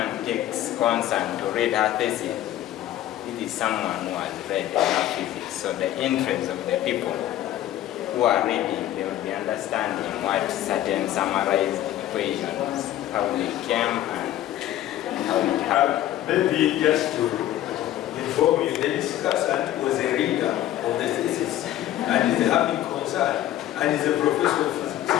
takes concern to read her thesis, it is someone who has read enough physics. So the interest of the people who are reading, they will be understanding what certain summarized equations, how they came and how it happened. Maybe just to inform you, the discussant was a reader of the thesis and is having concern and is a professor of physics.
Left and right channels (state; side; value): quieter; right; 13.2 dB